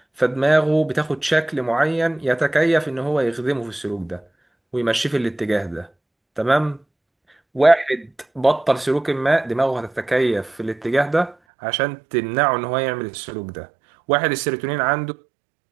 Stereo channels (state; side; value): drops out; left; at 11.4 s